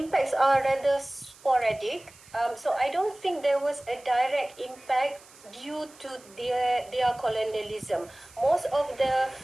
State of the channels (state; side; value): noise; right; hiss, 24 dB below the sound